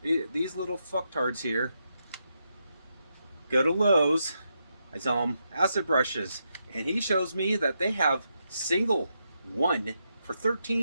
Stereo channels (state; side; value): inverted; both; correlation -0.83